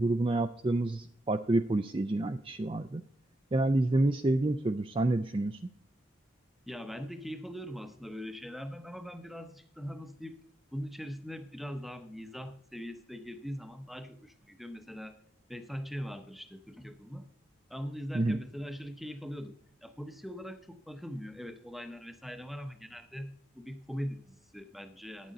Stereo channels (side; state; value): both; normal; correlation 0.86